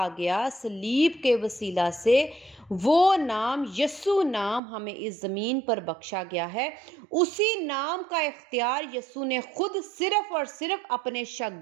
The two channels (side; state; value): left; drops out; at 4.6 s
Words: گیا صلیب کے وسیلہ سے، وہ نام یسوع نام ہمیں اس زمین پر بخشا گیا ہے۔ اسی نام کا اختیار یسوع نے خود صرف اور صرف اپنے